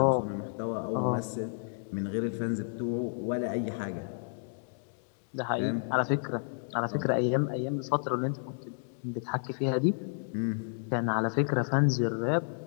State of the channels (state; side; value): silent; right; digital silence